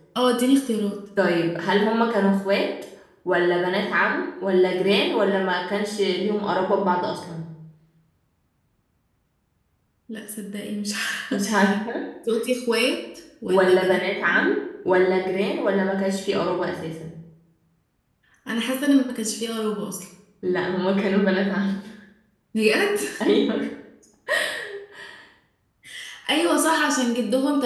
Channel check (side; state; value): both; identical; correlation 1.00